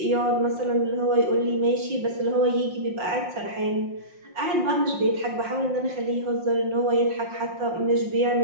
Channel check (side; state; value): left; late; 5.6 ms